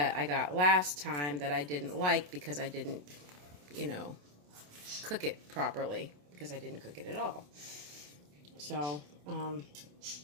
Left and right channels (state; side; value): late; left; 27 ms